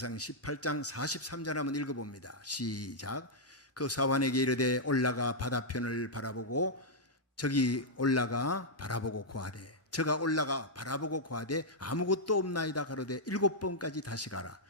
18장 43절 한번 읽어봅니다. 시작. 그 사환에게 이르되 올라가 바다편을 바라보고 저기 올라가 바라보고 고하되 저가 올라가 바라보고 고하되 아무것도 없나이다 가로되 7번까지 다시 가라.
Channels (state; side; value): normal; both; correlation -0.06